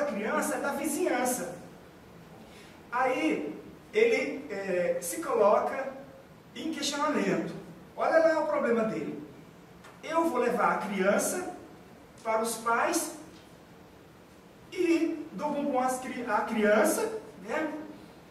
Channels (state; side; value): identical; both; correlation 1.00